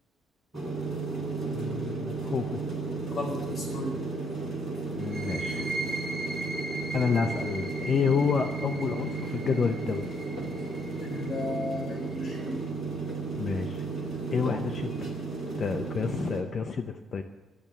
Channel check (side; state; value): both; normal; correlation 0.68